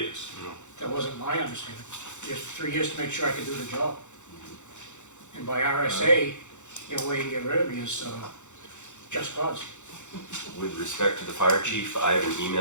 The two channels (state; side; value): late; right; 0.84 ms